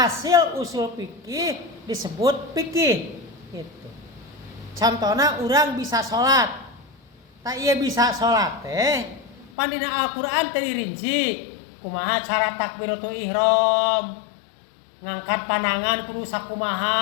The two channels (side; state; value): right; drops out; at 9.5 s